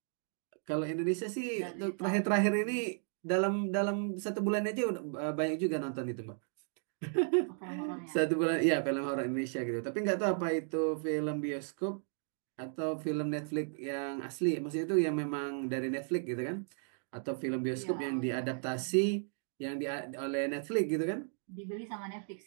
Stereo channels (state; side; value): silent; left; 55 dB below the other